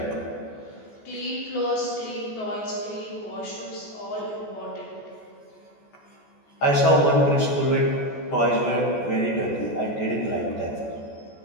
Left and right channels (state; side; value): late; right; 14 ms